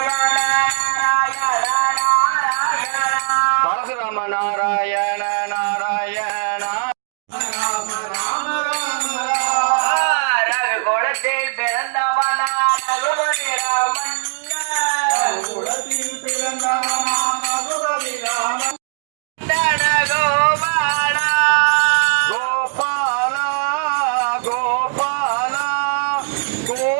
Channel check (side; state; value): left; silent; digital silence